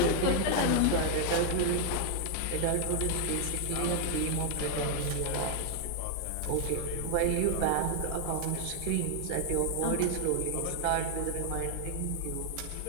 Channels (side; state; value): both; different; correlation 0.00